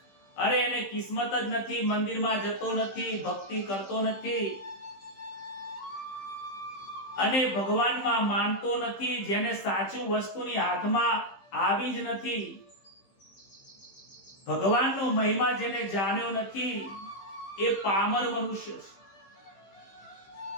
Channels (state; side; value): late; right; 15 ms